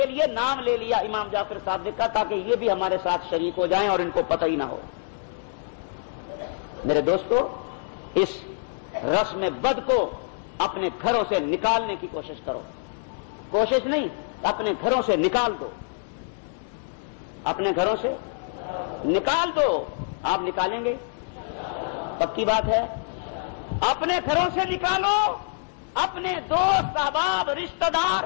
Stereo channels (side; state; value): right; silent; digital silence